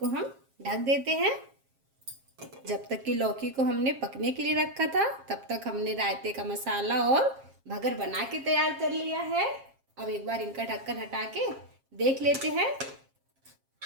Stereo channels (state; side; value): late; left; 7.4 ms